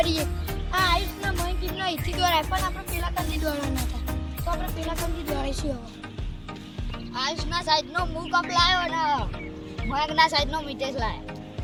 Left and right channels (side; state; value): both; identical; correlation 1.00